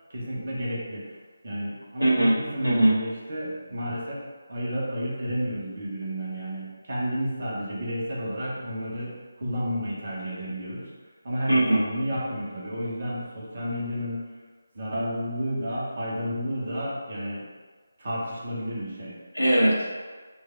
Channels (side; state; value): both; inverted; correlation -0.92